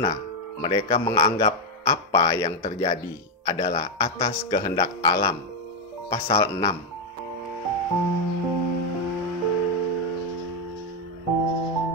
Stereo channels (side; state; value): both; normal; correlation 0.02